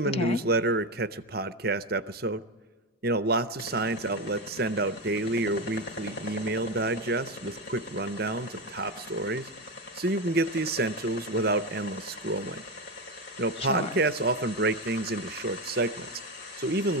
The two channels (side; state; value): both; normal; correlation 0.14